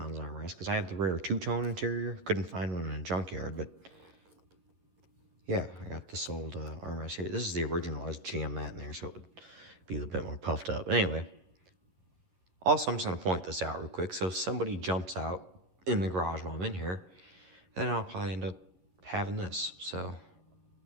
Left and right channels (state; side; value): late; left; 11 ms